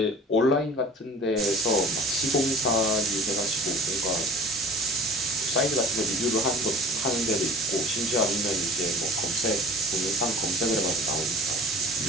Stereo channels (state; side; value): normal; both; correlation 0.43